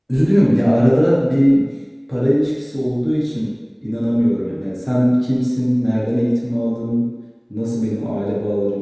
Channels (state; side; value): identical; both; correlation 1.00